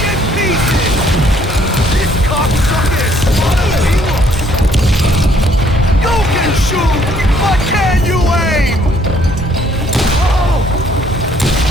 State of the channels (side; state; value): both; normal; correlation 0.64